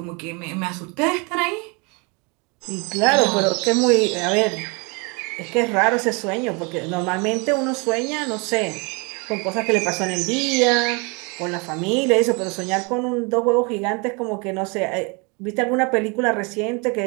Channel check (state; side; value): quieter; left; 30.9 dB